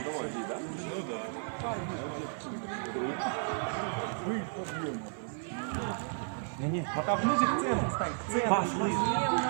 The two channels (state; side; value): silent; left; 56 dB below the other